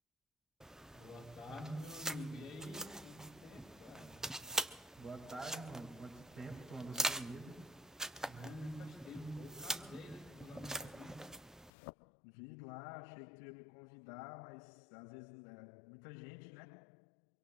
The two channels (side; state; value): right; drops out; at 11.7 s